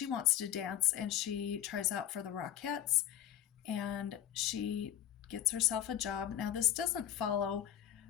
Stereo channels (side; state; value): right; quieter; 11.4 dB